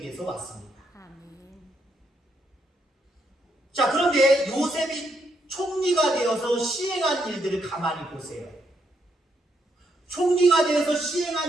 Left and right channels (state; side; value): normal; both; correlation 0.77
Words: 왔습니다. 자, 그런데 요셉이 총리가 되어서 시행한 일들을 가만히 보세요. 총리가 되어서